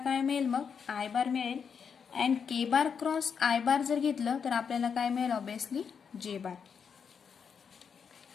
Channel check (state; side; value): quieter; right; 6.6 dB